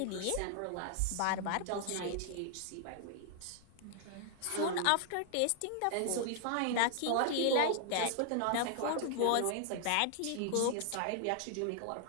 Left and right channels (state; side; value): different; both; correlation 0.00